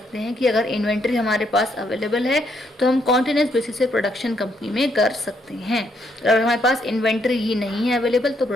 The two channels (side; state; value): both; normal; correlation 0.73